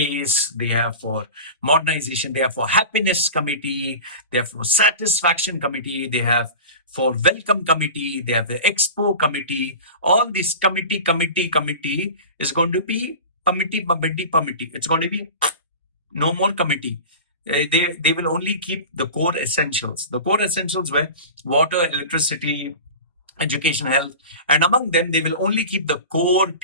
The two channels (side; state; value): both; inverted; correlation -0.33